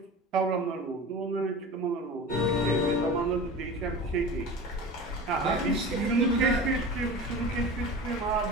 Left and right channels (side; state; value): both; normal; correlation 0.34